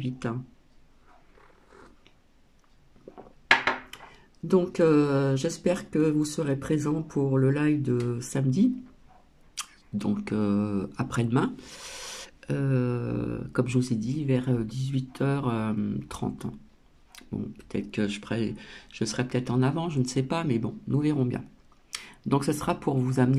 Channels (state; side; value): identical; both; correlation 1.00